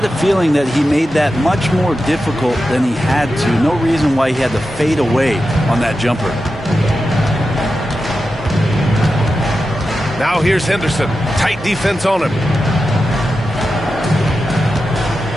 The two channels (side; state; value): both; normal; correlation 0.91